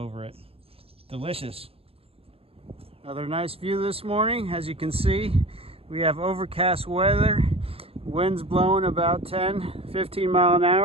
it. Delicious. Another nice view this morning. As you can see, we have overcast weather. Wind's blowing about 10-15 mile an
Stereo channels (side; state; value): left; late; 0.28 ms